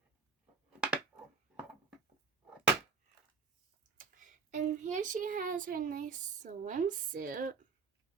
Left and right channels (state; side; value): quieter; left; 5.0 dB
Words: And here she has her nice swimsuit